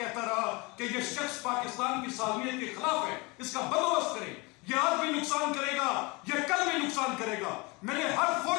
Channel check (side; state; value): right; quieter; 26.5 dB